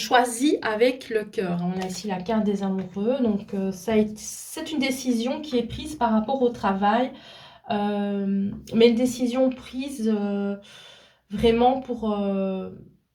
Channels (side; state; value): both; identical; correlation 1.00